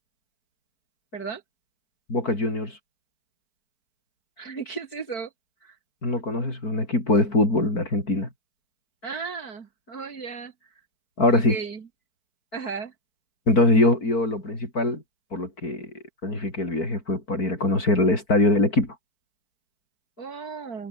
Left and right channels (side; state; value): right; late; 4.5 ms